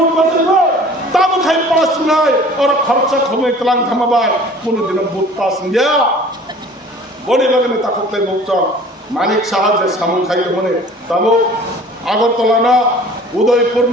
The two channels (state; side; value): normal; both; correlation 0.47